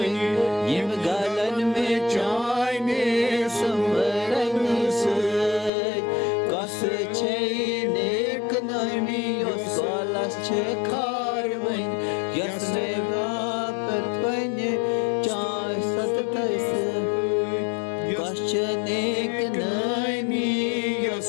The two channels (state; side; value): drops out; right; at 5.7 s